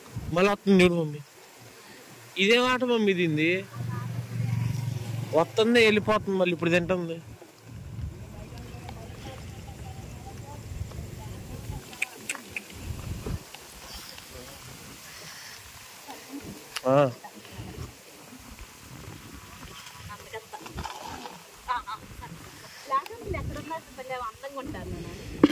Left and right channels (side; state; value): both; identical; correlation 1.00